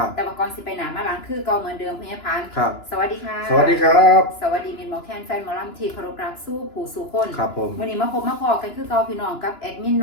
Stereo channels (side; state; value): right; late; 2.9 ms